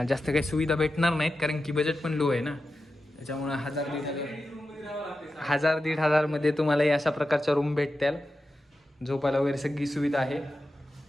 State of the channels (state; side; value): normal; both; correlation 0.92